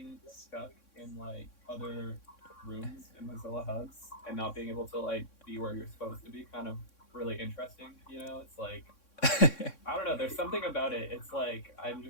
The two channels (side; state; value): right; late; 3.6 ms